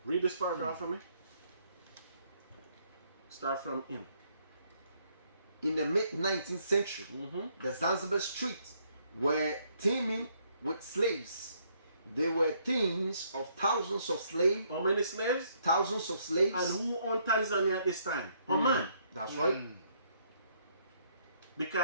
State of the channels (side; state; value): both; inverted; correlation -0.69